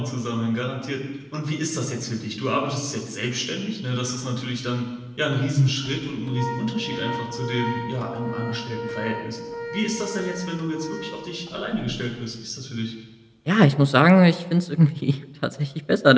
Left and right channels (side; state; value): both; identical; correlation 1.00